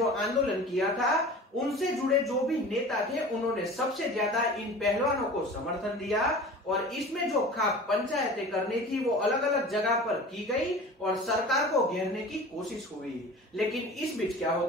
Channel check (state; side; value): normal; both; correlation 0.39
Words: आंदोलन किया था, उनसे जुड़े जो भी नेता थे, उन्होंने सबसे ज्यादा इन पहलवानों को समर्थन दिया। और इसमें जो खाप पंचायतें करनी थी वो अलग अलग जगह पर की गई और सरकार को घेरने की कोशिश हुई। लेकिन इस बीच क्या